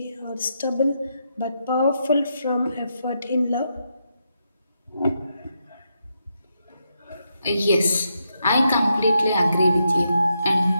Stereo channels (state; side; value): inverted; both; correlation -0.82